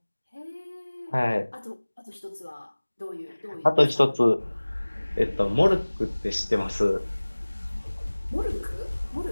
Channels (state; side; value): inverted; both; correlation -1.00